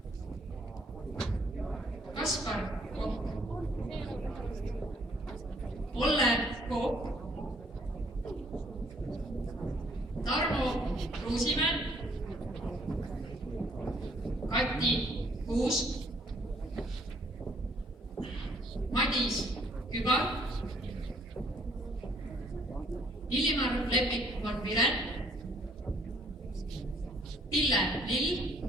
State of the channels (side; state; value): both; normal; correlation 0.63